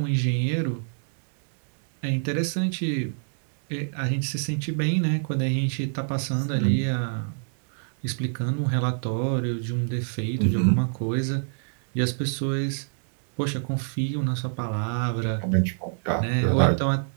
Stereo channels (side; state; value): left; silent; digital silence